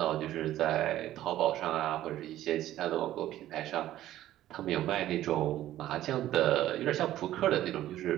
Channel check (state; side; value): quieter; left; 13.5 dB